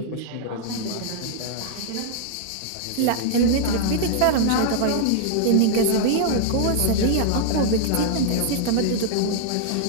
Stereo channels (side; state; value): both; different; correlation -0.01